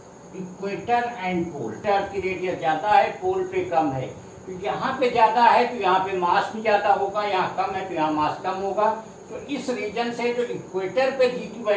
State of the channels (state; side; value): identical; both; correlation 1.00